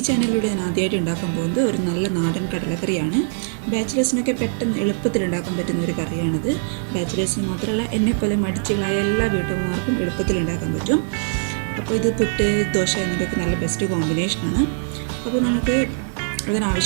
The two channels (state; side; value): silent; left; 64 dB below the other